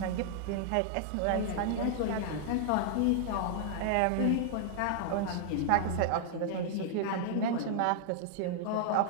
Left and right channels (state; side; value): different; both; correlation -0.01